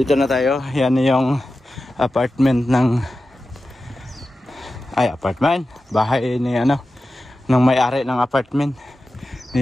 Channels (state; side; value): normal; both; correlation 0.93